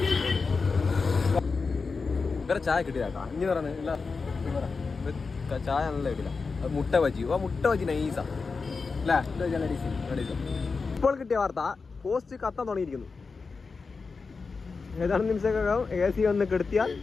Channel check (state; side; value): quieter; right; 4.6 dB